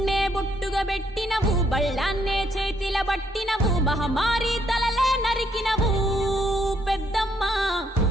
బొట్టుగా పెట్టినవు, బళ్ళాన్నే చేతిల పట్టినవు, మహమారి తలలే నరికినవు పెద్దమ్మ,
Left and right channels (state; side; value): normal; both; correlation 0.71